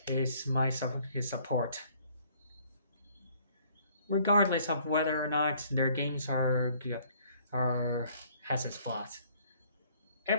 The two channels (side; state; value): both; inverted; correlation -0.61